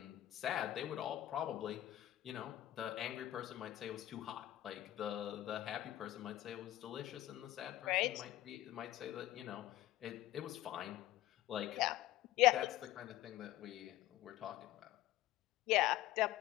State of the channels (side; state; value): right; quieter; 14.7 dB